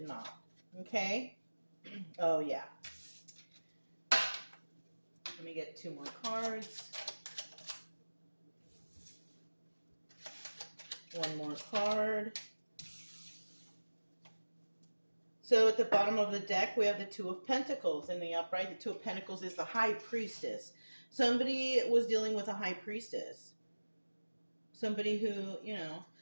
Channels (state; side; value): inverted; both; correlation -1.00